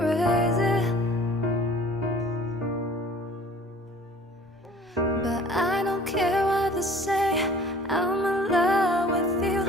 But I don't care what they say, I'm in love with you.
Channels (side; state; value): both; normal; correlation 0.49